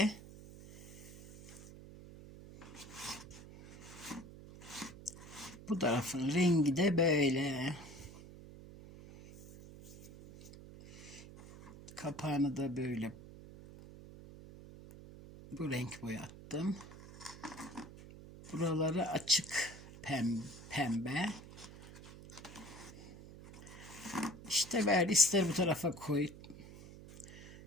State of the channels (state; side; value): noise; right; hum, 16 dB below the sound